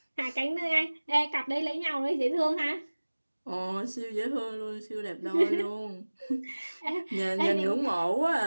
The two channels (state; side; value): inverted; both; correlation -1.00